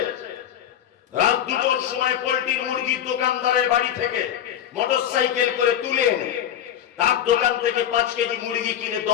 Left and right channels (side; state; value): right; quieter; 10.2 dB